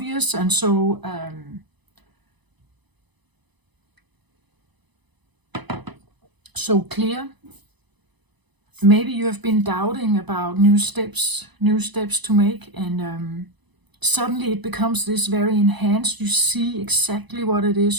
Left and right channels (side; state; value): left; late; 1.0 ms